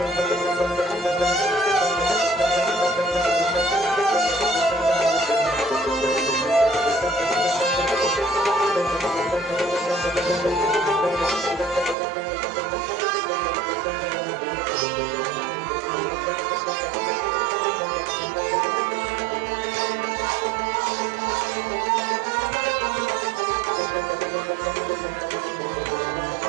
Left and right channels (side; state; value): left; drops out; at 12.0 s